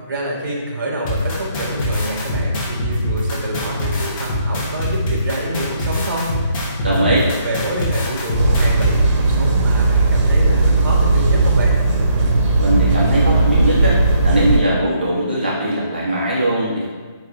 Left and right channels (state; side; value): inverted; both; correlation -0.71